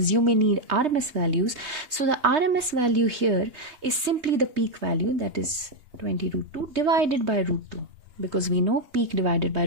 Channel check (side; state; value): left; late; 3.3 ms